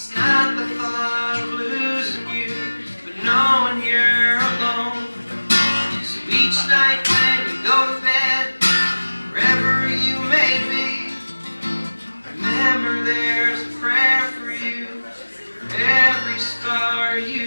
not the thought of losing you, but knowing you're alone. So each night when you go to bed, wherever you may be, remember there's a prayer for you, for every star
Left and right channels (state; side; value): inverted; both; correlation -1.00